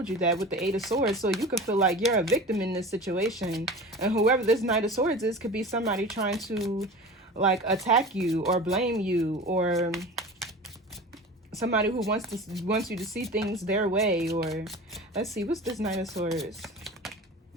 you that with the Eight of Swords. So you could feel like you're a victim in this situation. And whoever this Knight of Swords is could be somebody trying to like attack you or blame you, or somebody who wants you to see things their way. Or let's see, what's this Knight of Swords?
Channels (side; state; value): both; normal; correlation 0.35